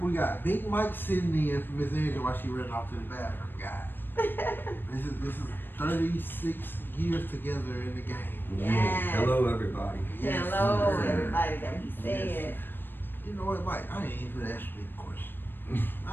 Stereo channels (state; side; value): late; right; 0.096 ms